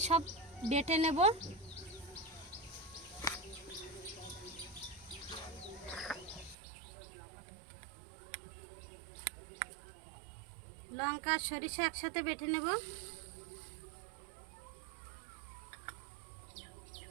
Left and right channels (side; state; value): left; drops out; at 6.6 s